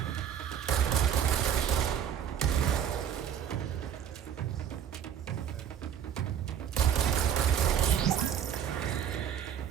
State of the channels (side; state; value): left; quieter; 9.1 dB